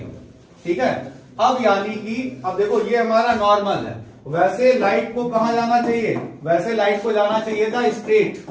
ठीक है। अब यानी कि अब देखो ये हमारा नॉर्मल है, वैसे लाइट को कहां जाना चाहिए, वैसे लाइट को जाना चाहिए था स्ट्रेट,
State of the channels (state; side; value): identical; both; correlation 1.00